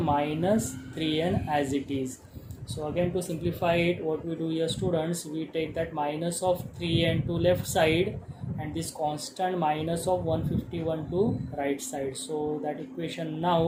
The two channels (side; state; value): both; identical; correlation 1.00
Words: 3n as it is. So again to simplify it, what we do here students, we take that minus of 3n to left side and this constant minus of 151 to right side. So that equation